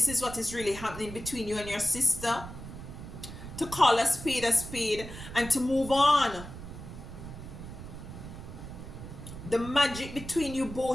is what is really happening between you and your sister. To call a spade and to move on. The magic between you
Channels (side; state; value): right; noise; rumble, 11 dB below the sound